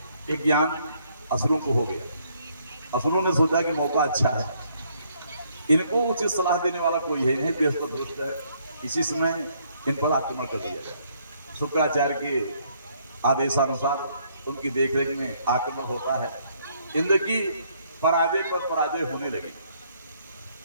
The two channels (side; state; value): both; inverted; correlation -0.68